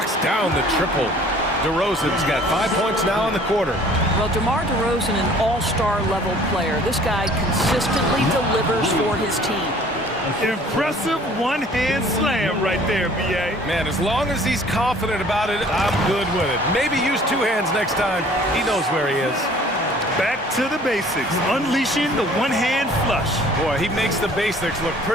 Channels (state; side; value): normal; both; correlation 0.52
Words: down the triple. DeRozan's got 5 points now in the quarter. Well, DeMar DeRozan, an all-star level player. This guy consistently delivers for his team. Impressive one-hand slam right there, B.A. Man, as long as he's confident about it, I'm good with it. Maybe use two hands next time. He knows where he is. Back to the basics, unleashing the one-hand flush. Boy, he makes the basics look